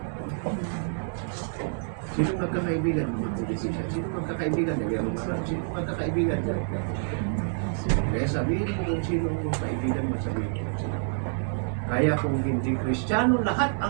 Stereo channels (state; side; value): silent; left; digital silence